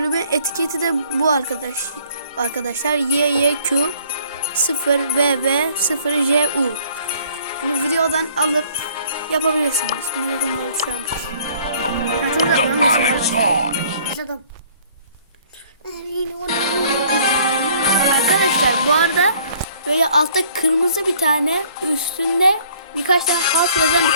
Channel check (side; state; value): both; inverted; correlation -0.57